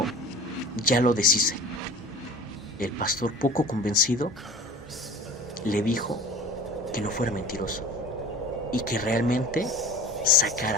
ya lo deshice. El pastor, poco convencido, le dijo que no fuera mentiroso y que realmente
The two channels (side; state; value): both; normal; correlation 0.40